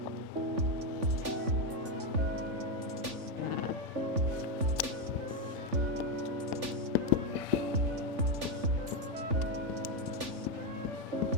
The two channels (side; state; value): left; late; 3.5 ms